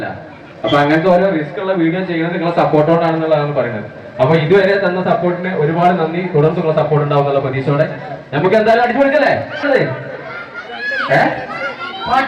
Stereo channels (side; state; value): both; identical; correlation 1.00